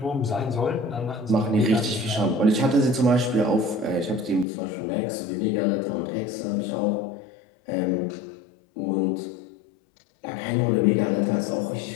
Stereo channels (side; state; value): right; drops out; at 4.5 s